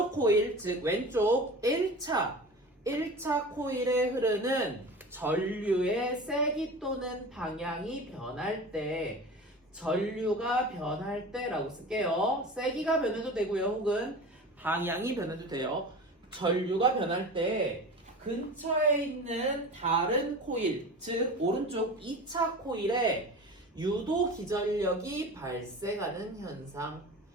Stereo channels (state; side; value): normal; both; correlation 0.34